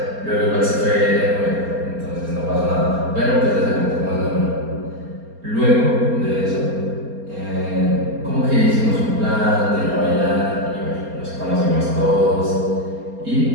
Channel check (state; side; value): late; left; 4.3 ms